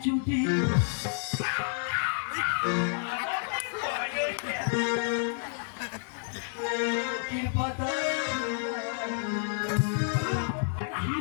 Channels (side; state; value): right; silent; 58 dB below the other